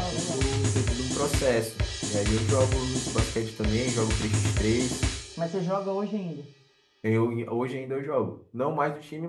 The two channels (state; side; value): identical; both; correlation 1.00